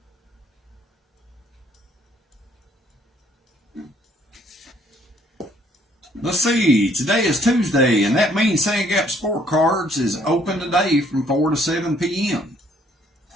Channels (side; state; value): both; normal; correlation 0.64